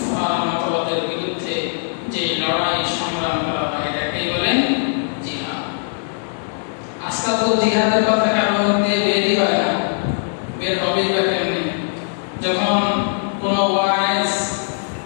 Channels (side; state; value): right; silent; digital silence